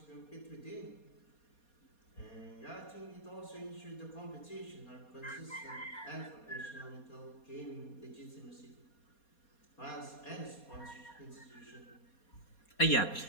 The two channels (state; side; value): late; right; 4.2 ms